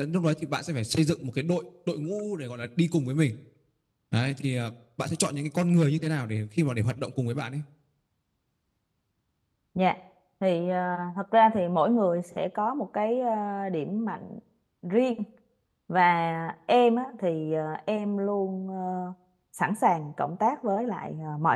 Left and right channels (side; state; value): both; identical; correlation 1.00